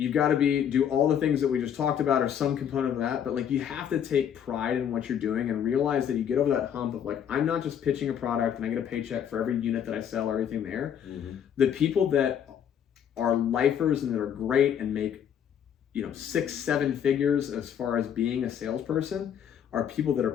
got to do all the things that we just talked about, or some component of that, but like you have to take pride in what you're doing and realize that you get over that hump of like, I'm not just pitching a product and I get a paycheck for every unit that I sell or everything there. Mm-hmm. The people that are lifers and that are great and make 6-7 figures as far as being a salesperson are people that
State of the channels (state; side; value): quieter; right; 8.8 dB